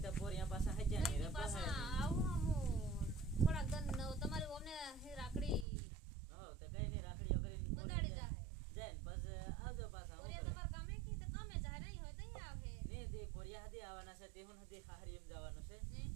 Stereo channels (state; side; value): drops out; left; at 5.7 s